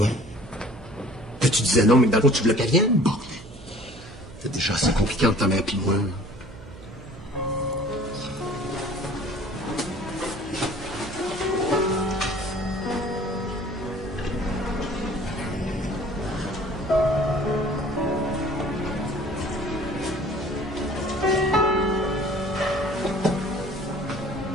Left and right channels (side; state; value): right; noise; hum, 17 dB below the sound